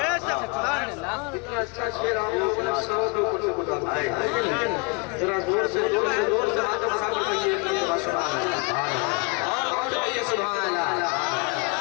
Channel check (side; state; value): right; quieter; 30.5 dB